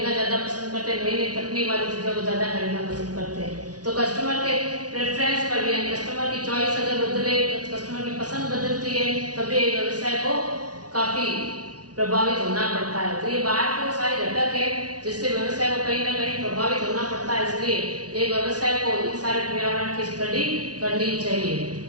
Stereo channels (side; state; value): left; late; 0.68 ms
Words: ज्यादा पसंद करते हैं, नई तकनीक वाली चीजों को ज्यादा खरीदना पसंद करते हैं। तो कस्टमर के प्रेफरेंस पर भी, कस्टमर की चॉइस अगर बदले, कस्टमर की पसंद बदलती है, तभी व्यवसाय को काफी प्रभावित होना पड़ता है। तो ये बाहर के सारे घटक है जिससे व्यवसाय को कहीं ना कहीं प्रभावित होना पड़ता है, इसलिए एक व्यवसाय को इन सारे पर्यावरण की स्टडी करनी चाहिए।